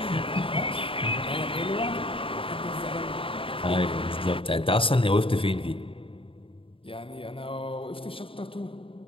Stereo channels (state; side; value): late; right; 0.26 ms